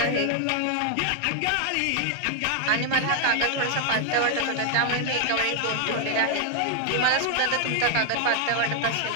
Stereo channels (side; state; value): both; different; correlation 0.00